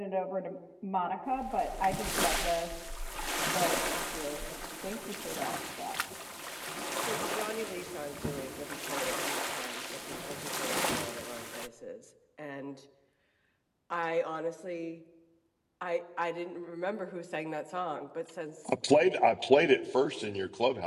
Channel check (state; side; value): identical; both; correlation 1.00